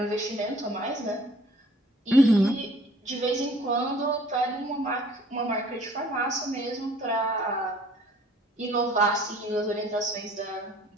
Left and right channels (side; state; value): both; normal; correlation 0.54